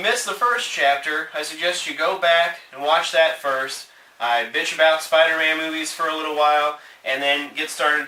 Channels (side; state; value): both; identical; correlation 1.00